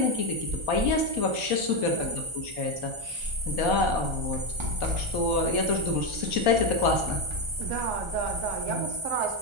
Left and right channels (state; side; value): late; left; 1.3 ms